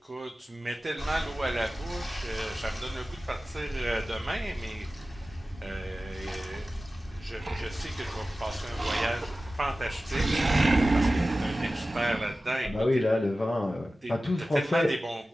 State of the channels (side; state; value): both; normal; correlation 0.96